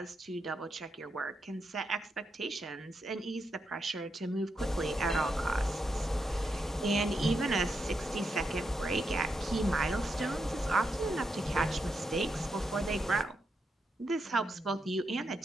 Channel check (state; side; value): normal; both; correlation 0.83